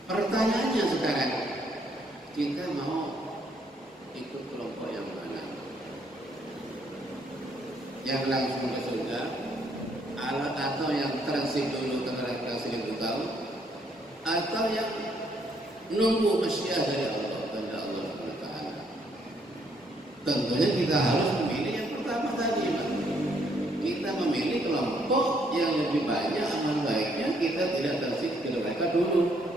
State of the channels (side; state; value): both; normal; correlation 0.70